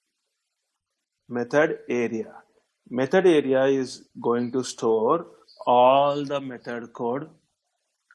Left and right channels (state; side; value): identical; both; correlation 1.00